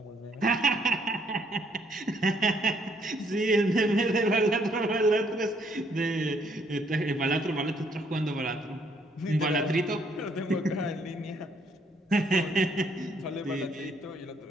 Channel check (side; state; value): both; normal; correlation 0.68